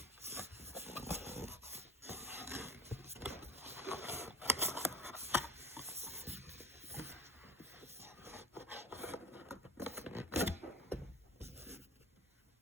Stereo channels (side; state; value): both; normal; correlation 0.32